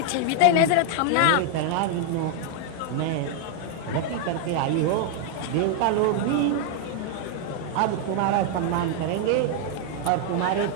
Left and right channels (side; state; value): both; different; correlation 0.00